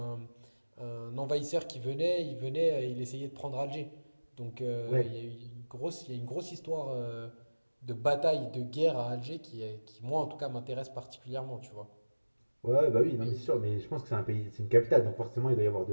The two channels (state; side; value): inverted; both; correlation -1.00